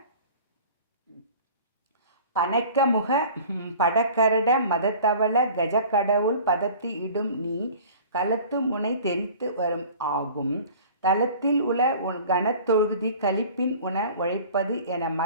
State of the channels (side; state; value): both; inverted; correlation -0.44